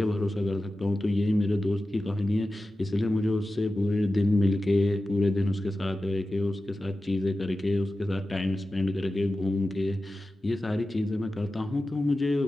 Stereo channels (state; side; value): normal; both; correlation 0.94